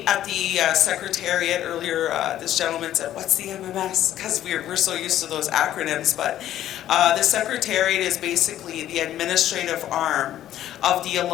at the Secretariat earlier, this gentleman said, what's the MMS? Because we're so used to those acronyms, but the Secretariat is basically the administrative arm of the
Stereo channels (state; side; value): quieter; right; 12.3 dB